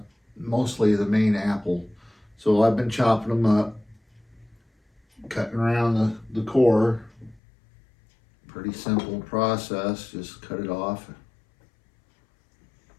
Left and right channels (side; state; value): right; drops out; at 7.4 s